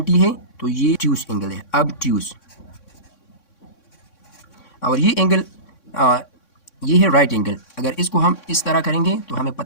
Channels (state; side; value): late; right; 3.6 ms